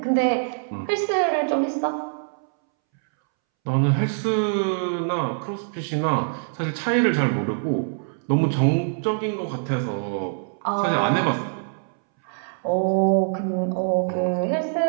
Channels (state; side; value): silent; left; 63 dB below the other